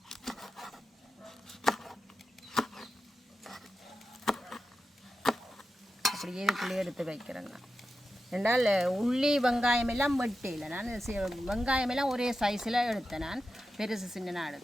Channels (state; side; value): normal; both; correlation 0.91